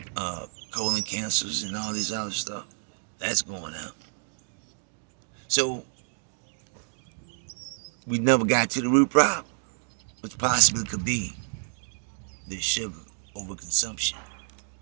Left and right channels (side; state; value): left; silent; 59 dB below the other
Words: colon cancers and all this other stuff. That's going out. So, we never got to the root problem, which possibly could be the sugar overconsumption,